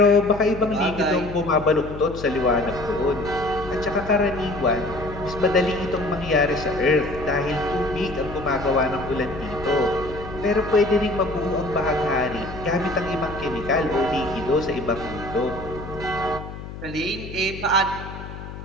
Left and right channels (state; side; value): noise; left; hum, 11 dB below the sound